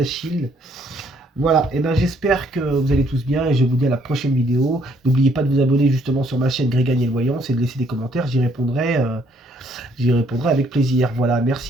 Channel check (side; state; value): both; normal; correlation 0.66